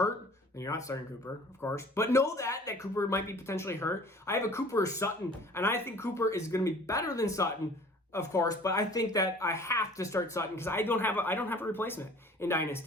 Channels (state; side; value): normal; both; correlation 0.48